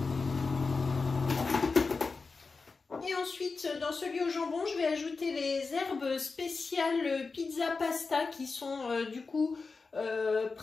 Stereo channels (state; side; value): quieter; right; 4.3 dB